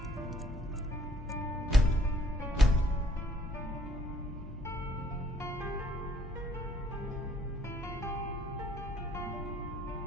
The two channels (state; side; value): normal; both; correlation 0.65